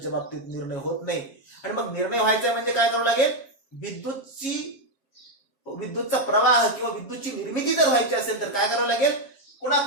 बाबतीत निर्णय होत नाही. आणि मग निर्णय व्हायचा म्हणजे काय करावं लागेल, विद्युतचा प्रवाह किंवा विद्युतची निर्मिती जर व्हायची असेल तर काय करावं लागेल,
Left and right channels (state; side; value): late; right; 7.3 ms